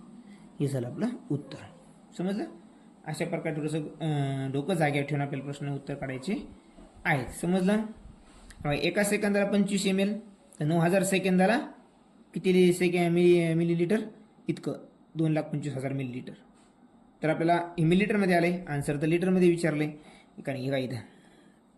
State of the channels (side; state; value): both; identical; correlation 1.00